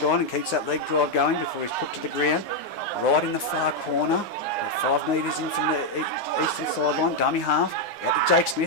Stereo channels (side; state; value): right; late; 9.7 ms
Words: on and keeps that leg drive going before he's put to the ground. Right in the far corner. About 5 metres in from the eastern sideline. Dummy half. Out to Jake